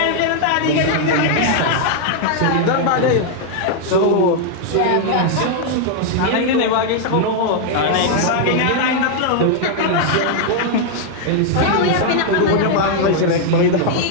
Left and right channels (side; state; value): both; different; correlation 0.00